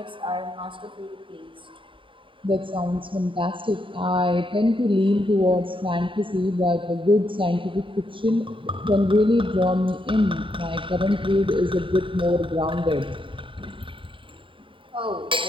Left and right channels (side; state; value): left; late; 0.25 ms